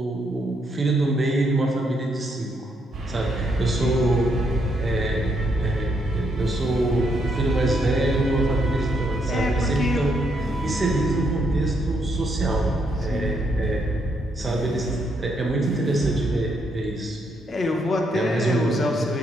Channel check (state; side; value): normal; both; correlation 0.75